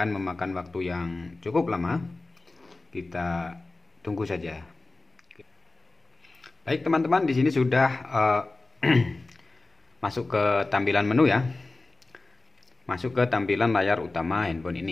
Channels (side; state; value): right; quieter; 3.3 dB